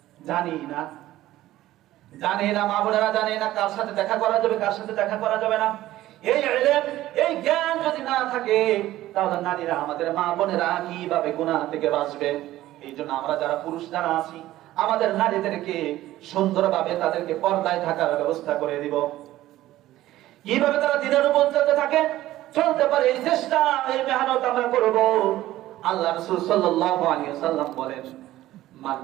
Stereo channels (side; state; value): left; quieter; 15.1 dB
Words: জানি না, জানি না। মা বোনেরা জানি না কার সাথে দেখা করা যাবে, কার সাথে দেখা করা যাবে না। এই ইলম, এই জ্ঞান যদি না থাকে, তাহলে নারীরা, আমাদের মা বোনেরা কিভাবে গুনাহ থেকে বাঁচবে? এই জন্য আমরা যারা পুরুষ যারা আছি, আমাদের নারীদেরকে সুন্দরভাবে তাদেরকে পর্দায় থাকার ব্যবস্থা করে দিব। কিভাবে তারা দিনের উপর চলতে থাকে, চলতে পারে, এই চেষ্টা, এই মেহনত আমরা করব। আল্লাহ রাসূল সাল্লাল্লাহু আলাইহি ওয়াসাল্লাম বলেন,